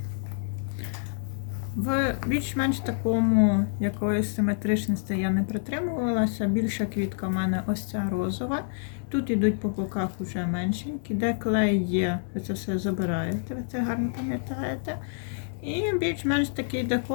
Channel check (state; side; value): silent; right; digital silence